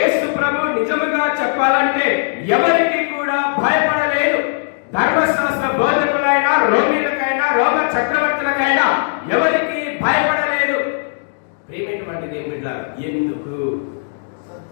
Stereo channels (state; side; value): silent; right; digital silence